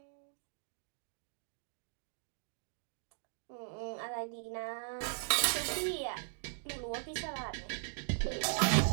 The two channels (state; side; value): silent; left; digital silence